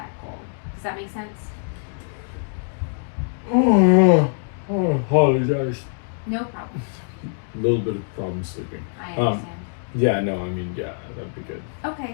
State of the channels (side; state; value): right; silent; digital silence